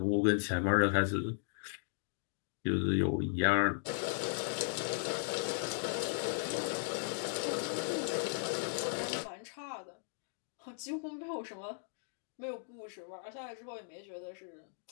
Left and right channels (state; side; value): silent; right; digital silence